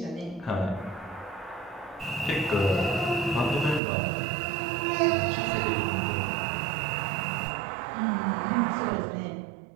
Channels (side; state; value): left; drops out; at 3.8 s